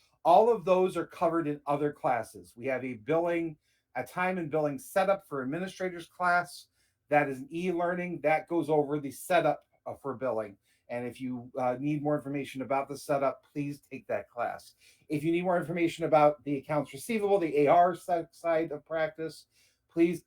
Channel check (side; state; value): both; identical; correlation 1.00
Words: All of those are covered in other classes. We have a time and billing setup for administrators class. That is an e-learning that goes over the setup for billing. And if you need more information about the setup, please take that class. If you need more information about the accounts receivable, the AR side of practice, please